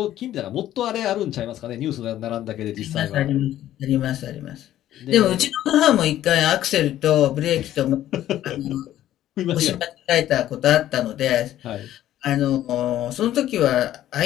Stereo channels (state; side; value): quieter; right; 12.8 dB